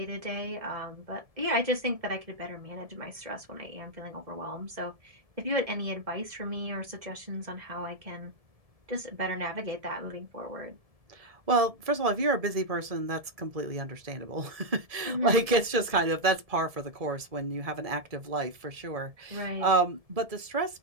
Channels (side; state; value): left; late; 1.7 ms